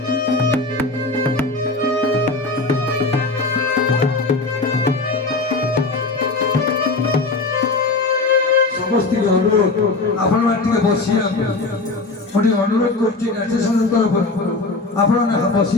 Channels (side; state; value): right; quieter; 3.5 dB